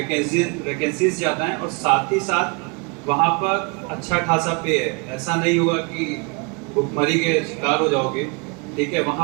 ज़्यादा हैं, और साथ ही साथ वहाँ पर अच्छा खासा पे है। ऐसा नहीं होगा कि भुखमरी के शिकार हो जाओगे, ठीक है,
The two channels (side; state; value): left; quieter; 31.8 dB